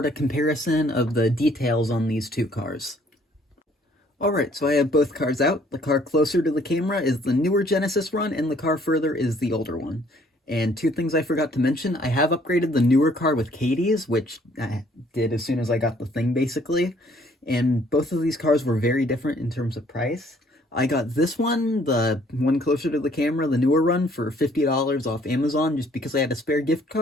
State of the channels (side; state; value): both; normal; correlation 0.61